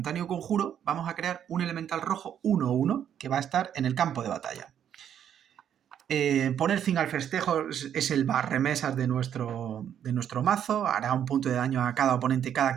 conjuro, vamos a crear un elemental rojo 1/1 que va a estar en el campo de batalla. Poner fin al festejo es el barremesas de nuestro mazo. Hará un punto de daño a cada oponente, cada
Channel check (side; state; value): left; quieter; 9.4 dB